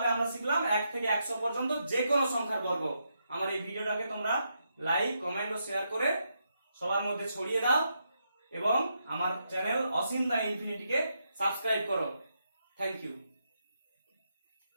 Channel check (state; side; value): inverted; both; correlation -0.81